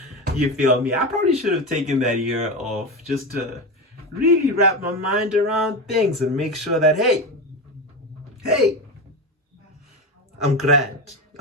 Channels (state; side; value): normal; both; correlation 0.20